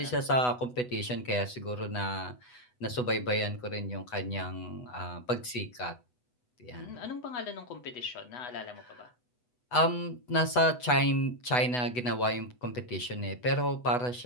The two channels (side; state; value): right; late; 8.1 ms